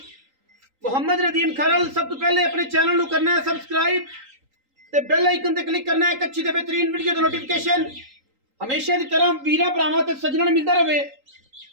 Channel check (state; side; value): late; left; 3.8 ms